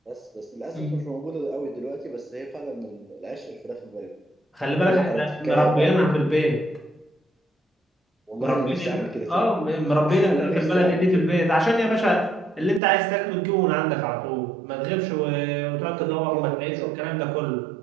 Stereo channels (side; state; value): left; drops out; at 12.8 s